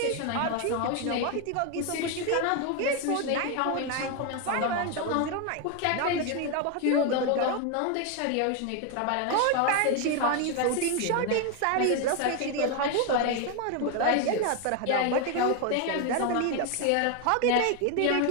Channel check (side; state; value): both; different; correlation 0.01